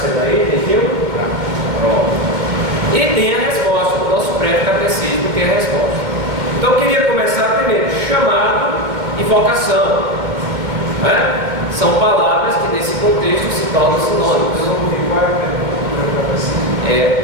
aí, viu? Pronto. E tem a resposta, o nosso prévio catecismo tem a resposta. Então eu queria começar primeiro, chamado e vocação. São palavras que nesse contexto se tornam sinônimos.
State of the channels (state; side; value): late; left; 2.2 ms